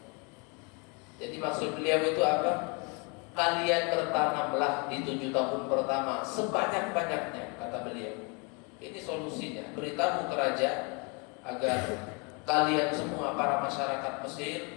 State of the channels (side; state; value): right; quieter; 32.4 dB